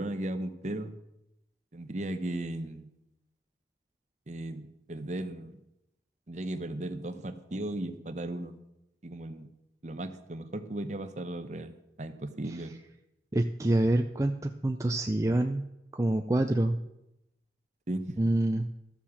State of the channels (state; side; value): normal; both; correlation 0.90